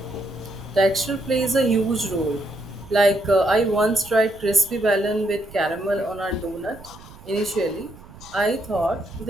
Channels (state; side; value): noise; right; rumble, 20 dB below the sound